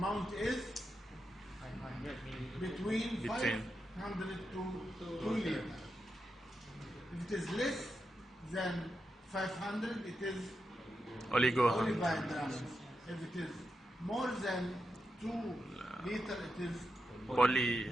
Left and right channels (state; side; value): normal; both; correlation 0.87